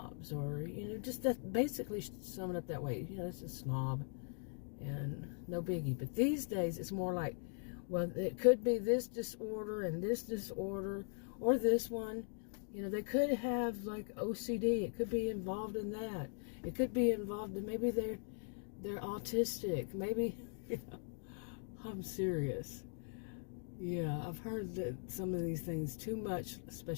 or, just that, basically sum it up that way. It's a snob, and no biggie. But these days, it's more like, well, it could be this disorder and this disorder, or this one. They could have, like, OCD. It could be involved in that. It could be involved in, maybe they're autistic. Maybe, I'm serious. Yeah, I've heard that some of these things too much,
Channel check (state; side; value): silent; right; 51 dB below the other